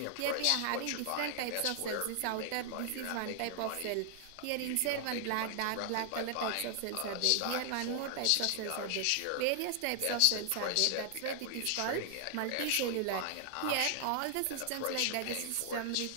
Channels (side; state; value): both; different; correlation 0.00